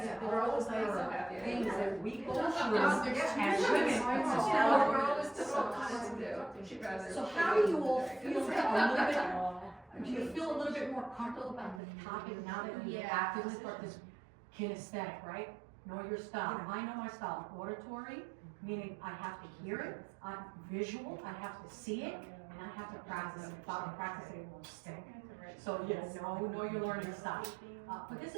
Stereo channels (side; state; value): left; drops out; at 11.8 s